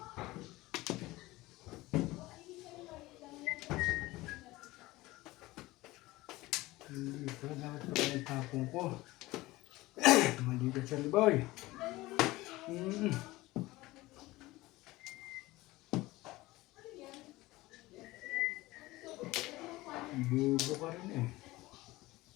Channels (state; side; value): quieter; right; 19.3 dB